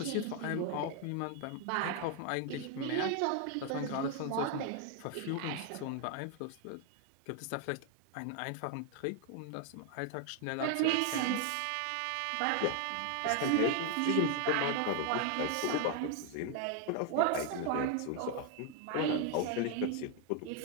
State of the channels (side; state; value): both; different; correlation 0.00